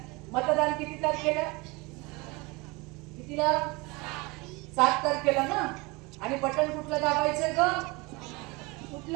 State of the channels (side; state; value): left; quieter; 25.6 dB